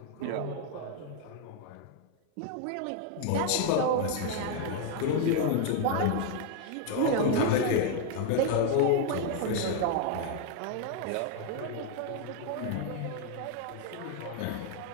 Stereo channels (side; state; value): both; different; correlation 0.01